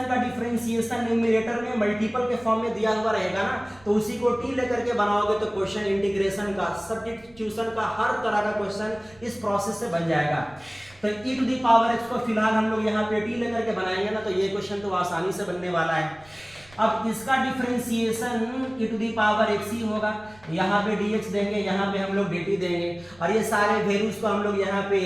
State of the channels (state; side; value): noise; right; rumble, 27 dB below the sound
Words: का डिफरेंशिएशन न्यूमरेटर में मल्टीपल के फॉर्म में दिया हुआ रहेगा ना, तो उसी को t लेकर के बनाओगे तो क्वेश्चन इंटीग्रेशन का, सब्स्टिट्यूशन का, हर तरह का क्वेश्चन इस प्रोसेस से बन जाएगा। तो e to the power x को फिलहाल हम लोग यहाँ पे t लेकर के बनाएंगे ना, तो ये क्वेश्चन तो आसानी से बनने वाला है। अब इसका differentiation e to the power x ही होगा, यहाँ पे dx देंगे, यहाँ पे हम लोग dt देंगे, और ये सारे वैल्यूज को हम लोग यहाँ पे